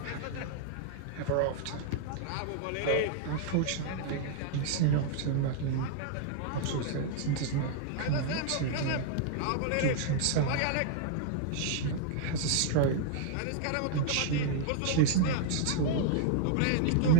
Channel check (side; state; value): both; different; correlation -0.01